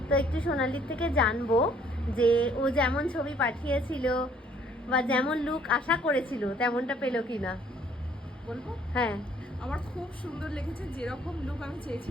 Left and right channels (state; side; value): normal; both; correlation 0.61